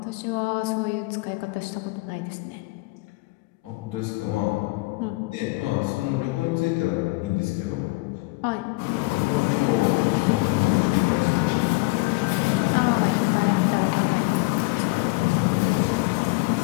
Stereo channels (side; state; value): right; quieter; 24.8 dB